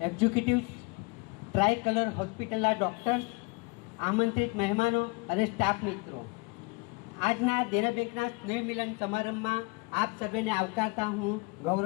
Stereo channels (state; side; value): quieter; right; 26.8 dB